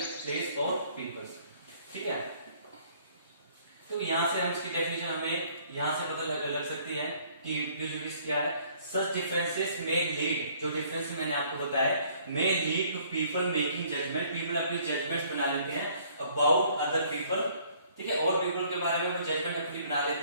place or people. ठीक है, तो यहाँ से हम इसकी डेफिनेशन हमें यहाँ से पता लग सकती है कि प्रेजुडिस क्या है. Such differences may lead, जो डिफरेंस मैंने आपको बताया, may lead to people making judgment. People अपनी judgments बना लेते हैं about other people. ठीक है, और people के बारे में वो judgment अपनी बना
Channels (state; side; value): inverted; both; correlation -0.60